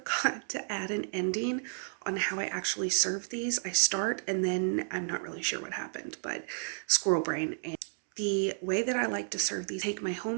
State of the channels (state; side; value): silent; left; digital silence